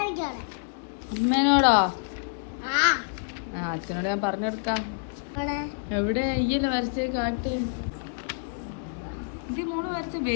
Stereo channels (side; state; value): right; silent; digital silence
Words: അമ്മേനോടാ? അച്ഛനോട് ഞാൻ പറഞ്ഞെടുക്കാം. എവിടെ ഈയല്ലേ വരച്ചേ? കാട്ട്. ഇത് മോള് വരച്ച